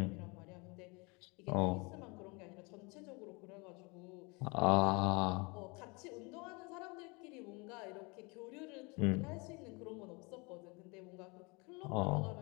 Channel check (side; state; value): right; quieter; 28.5 dB